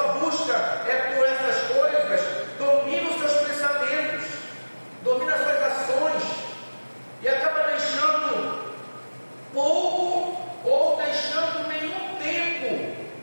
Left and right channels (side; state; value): both; inverted; correlation -1.00